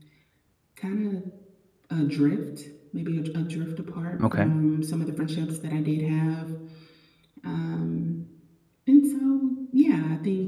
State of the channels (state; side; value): identical; both; correlation 1.00